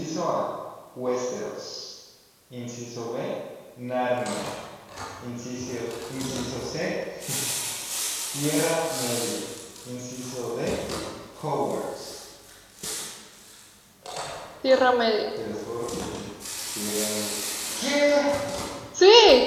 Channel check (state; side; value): identical; both; correlation 1.00